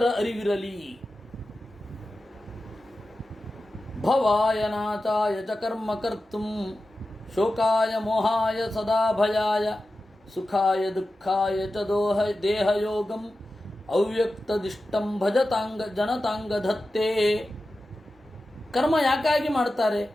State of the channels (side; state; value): both; normal; correlation 0.93